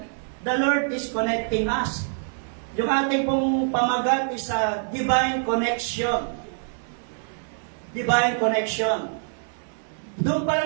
the Lord is connecting us. Yung ating pong pamagat is a divine connection. Divine connection. Doon pa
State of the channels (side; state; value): left; silent; 62 dB below the other